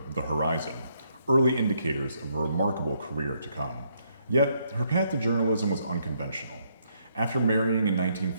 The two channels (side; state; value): both; inverted; correlation -0.74